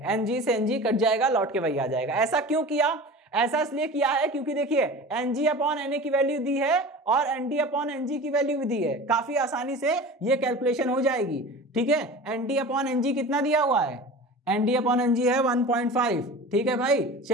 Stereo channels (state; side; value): normal; both; correlation 0.35